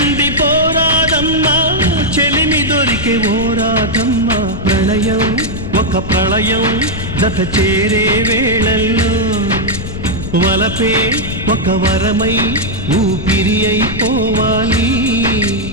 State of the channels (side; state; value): left; noise; rumble, 7 dB below the sound